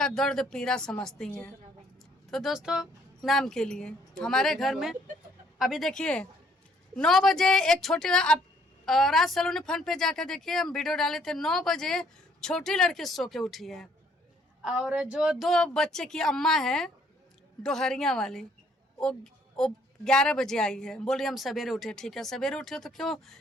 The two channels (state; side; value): normal; both; correlation 0.65